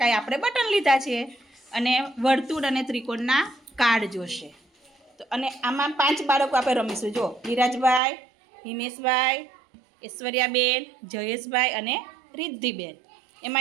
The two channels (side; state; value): left; drops out; at 8.0 s